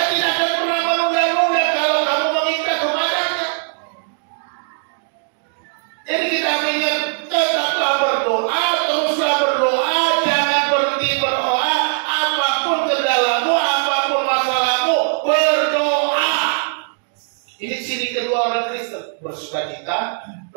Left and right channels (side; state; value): left; silent; digital silence